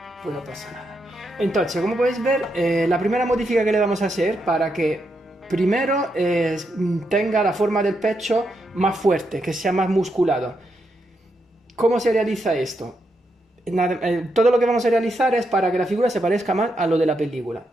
Pues no pasa nada. Entonces, como podéis ver, la primera modificación que le vamos a hacer para que primero tenga la forma del pecho más fuerte, que sea más musculado. ¿Cómo se realiza esto? Todo lo que vamos a realizar es para que la figura se parezca más a lo de la película.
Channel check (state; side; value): normal; both; correlation 0.82